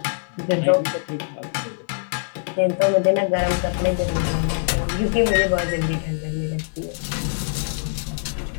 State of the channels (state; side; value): silent; right; 58 dB below the other